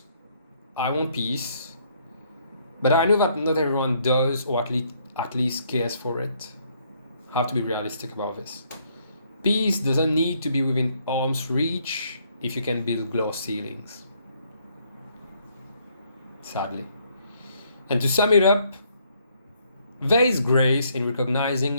I want peace, but I know that not everyone does, or at least cares for it. I have to be realistic about this. Peace doesn't need to be within arm's reach, if you can build glass ceilings. Sadly. And to sum it up, there is grace in recognizing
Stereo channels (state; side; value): inverted; both; correlation -0.69